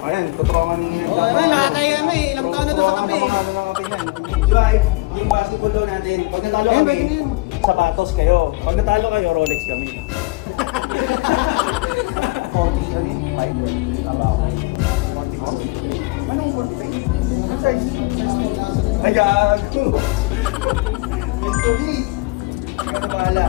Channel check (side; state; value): right; quieter; 23.4 dB